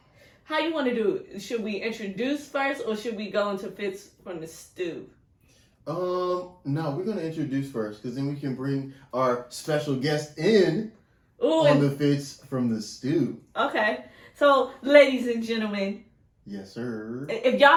How you want to do it? Should we introduce first or should we go into Fits from the Stew? No, we're going to introduce first because then we can bring our special guest in on the Fits from the Stew. Okay. So, ladies and gentlemen. Yes, sir. If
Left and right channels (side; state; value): both; identical; correlation 1.00